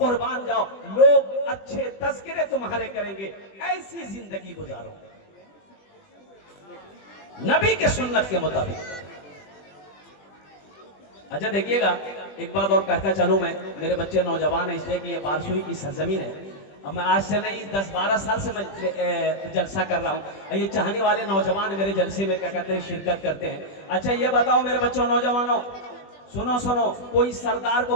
जाओ, लोग अच्छे तज़किरे तुम्हारे करेंगे। ऐसी जिंदगी गुजारो नबी के सुन्नत के मुताबिक। अच्छा देखिएगा, एक बात और कहता चलूं मैं, मेरे बच्चे नौजवान है इसलिए कि ये बारसुई की सरजमीन है। अब मैं आज से नहीं 10-12 साल से मैं जलसा कर रहा हूँ। ये चाहने वाले नौजवान मेरे जलसे में क्या कहते हैं, शिरकत करते हैं। अच्छा ये बताओ मेरे बच्चों, नौजवानों, सुनो, कोई सरदार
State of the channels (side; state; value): right; late; 20 ms